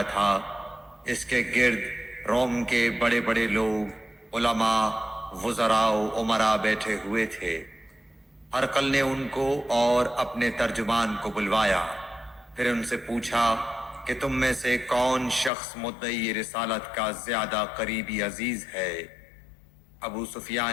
تھا، اس کے گرد روم کے بڑے بڑے لوگ، علماء، وزراء و امراء بیٹھے ہوئے تھے۔ ہرقل نے ان کو اور اپنے ترجمان کو بلوایا، پھر ان سے پوچھا کہ تم میں سے کون شخص مدعی رسالت کا زیادہ قریبی عزیز ہے؟ ابو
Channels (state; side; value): drops out; right; at 15.5 s